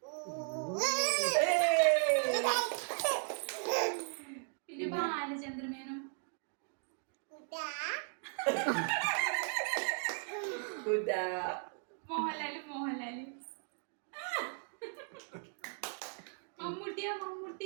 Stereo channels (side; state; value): left; silent; 53 dB below the other